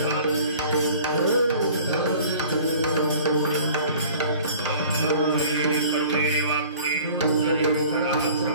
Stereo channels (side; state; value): both; inverted; correlation -0.47